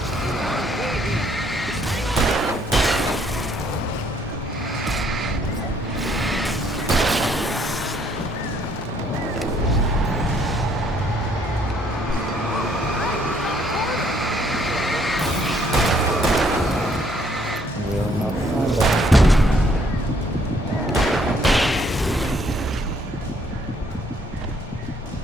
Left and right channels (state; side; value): normal; both; correlation 0.66